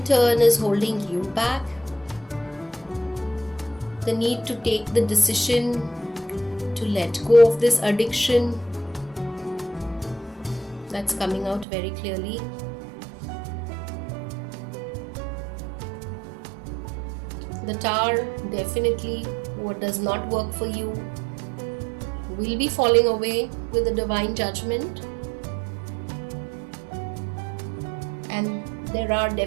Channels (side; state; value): left; drops out; at 11.7 s